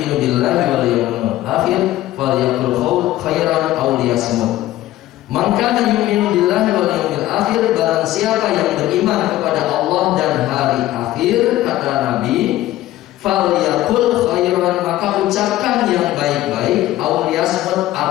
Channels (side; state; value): right; quieter; 15.0 dB